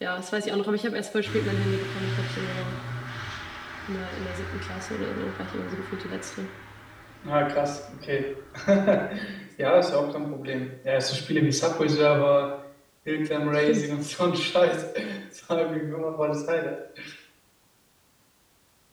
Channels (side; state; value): both; identical; correlation 1.00